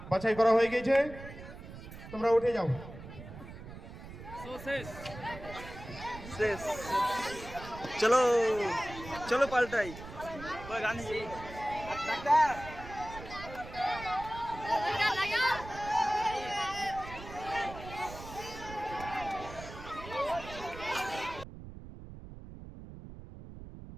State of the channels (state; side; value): noise; right; rumble, 13 dB below the sound